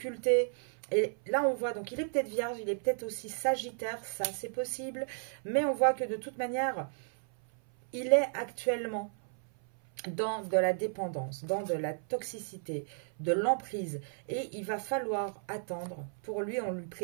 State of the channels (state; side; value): silent; left; 55 dB below the other